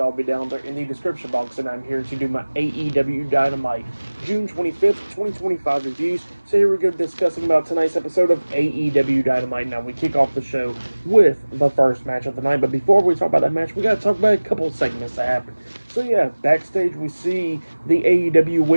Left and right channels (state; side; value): inverted; both; correlation -1.00